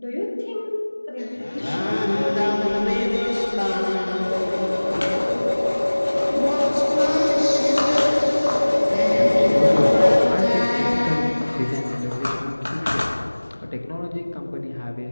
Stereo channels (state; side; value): inverted; both; correlation -1.00